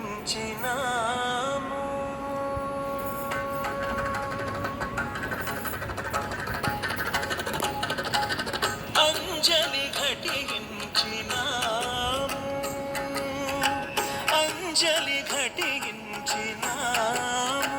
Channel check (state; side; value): identical; both; correlation 1.00